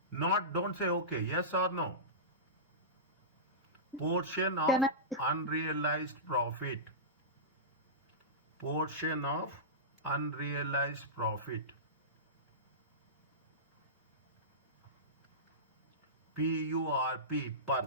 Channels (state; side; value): normal; both; correlation -0.19